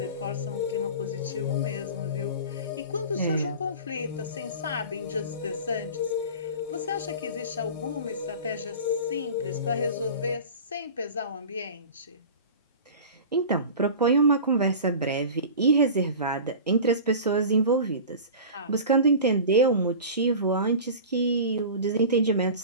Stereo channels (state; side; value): inverted; both; correlation -0.35